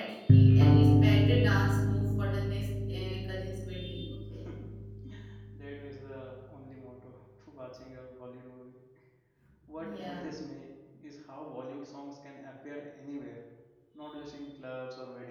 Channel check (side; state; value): both; identical; correlation 1.00